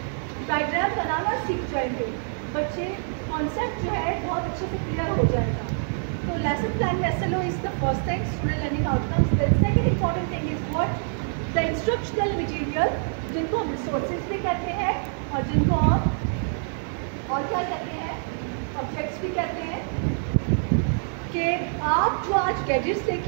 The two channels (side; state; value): left; silent; 61 dB below the other